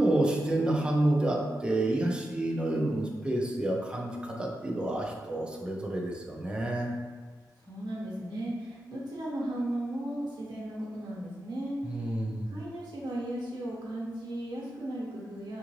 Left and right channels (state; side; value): normal; both; correlation 0.89